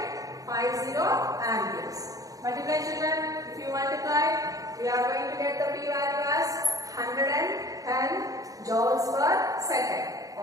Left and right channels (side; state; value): left; late; 0.17 ms